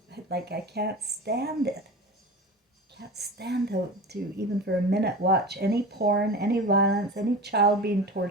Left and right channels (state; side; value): normal; both; correlation 0.31